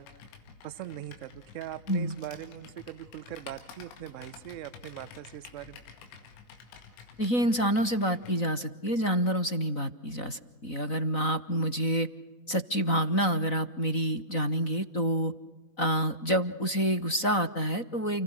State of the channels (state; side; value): late; right; 4.0 ms